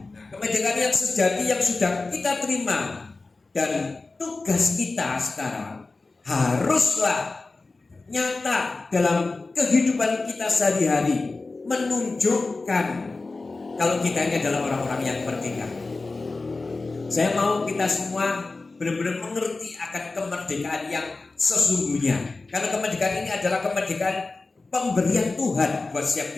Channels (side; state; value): right; quieter; 3.5 dB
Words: Kemerdekaan yang sejati yang sudah kita terima, dan tugas kita sekarang haruslah nyata dalam kehidupan kita sehari-hari, menunjukkan kalau kita ini adalah orang-orang yang merdeka. Saya mau kita semua benar-benar mengerti akan kemerdekaan yang sesungguhnya. Karena kemerdekaan ini adalah kemerdekaan pemberian Tuhan buat setiap